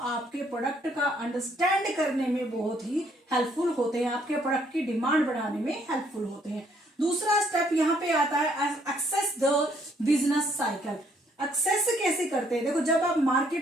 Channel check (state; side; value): normal; both; correlation 0.67